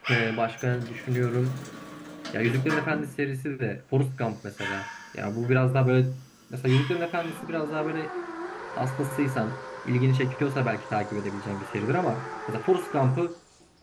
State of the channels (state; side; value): identical; both; correlation 1.00